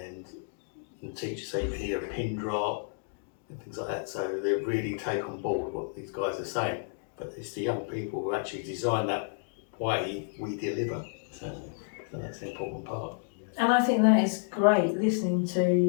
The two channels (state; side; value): silent; right; digital silence